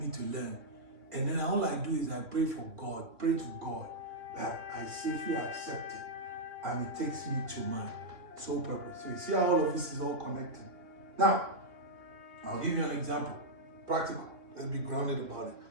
to learn. And then all I do is I pray to God that I safely accept it. And it takes me to my sole purpose. So you see how all of this is all connected. Now, I'll give you an example. Practical. Let's be grounded about it.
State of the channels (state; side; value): late; left; 3.0 ms